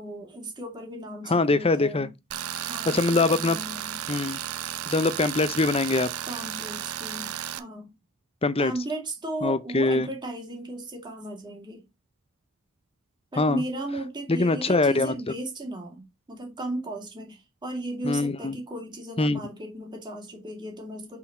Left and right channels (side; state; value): both; normal; correlation 0.43